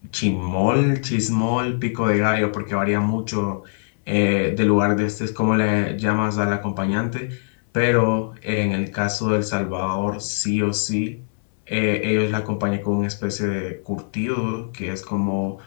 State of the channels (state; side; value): silent; right; 62 dB below the other